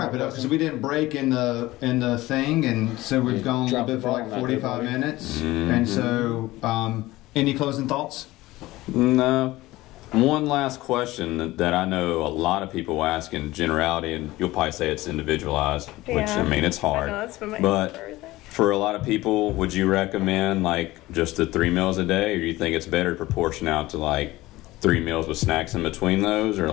it up because we didn't break in the thing, and so we've gone a little bit for like 45 minutes. And so, any closing thoughts? No. One last question that I know a lot of people ask in generality, and you'll probably say it's individualized, which, Yeah. I mean, it's hard. I know, that's been my but answer for everything. for a lot of people, would you recommend like just the 3 meals a day, or do you think it's better to proportion out to like 3 meals with snacks in between those, or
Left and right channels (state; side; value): quieter; right; 18.3 dB